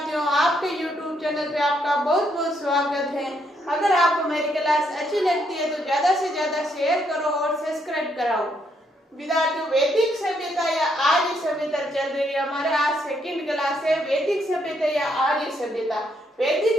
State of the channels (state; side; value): normal; both; correlation 0.74